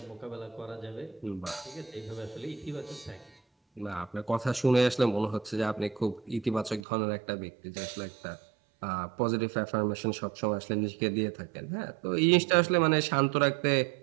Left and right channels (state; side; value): drops out; left; at 6.8 s